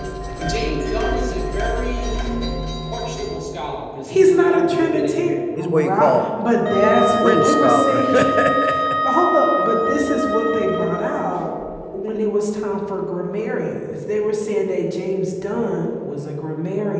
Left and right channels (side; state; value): both; identical; correlation 1.00